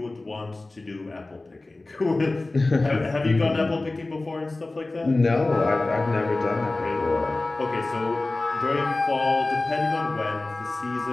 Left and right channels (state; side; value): quieter; right; 3.1 dB